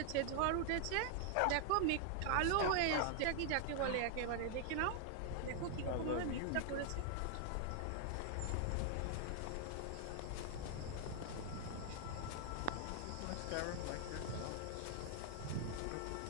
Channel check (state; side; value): different; both; correlation 0.00